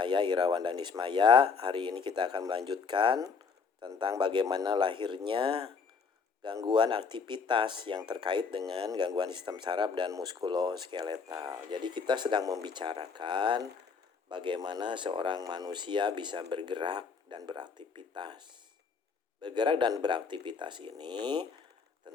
Irawan dan Ismaya. Hari ini kita akan melanjutkan tentang bagaimana lahirnya gangguan aktivitas yang terkait dengan gangguan sistem saraf dan muskuloskeletal. Jadi kita sedang membicarakan bagaimana seorang manusia bisa bergerak dan beraktivitas. Bergerak dan beraktivitas ini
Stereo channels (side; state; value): right; quieter; 5.3 dB